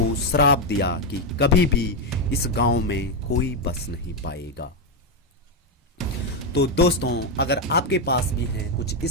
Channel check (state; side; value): normal; both; correlation 0.04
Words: श्राप दिया कि कभी भी इस गांव में कोई बस नहीं पाएगा। तो दोस्तों, अगर आपके पास भी हैं कुछ